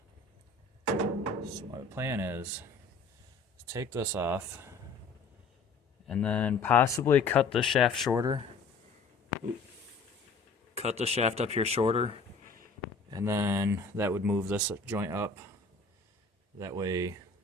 So my plan is to take this off and then possibly cut the shaft shorter. Cut the shaft up here shorter, and then that would move this joint up. That way,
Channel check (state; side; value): quieter; right; 4.1 dB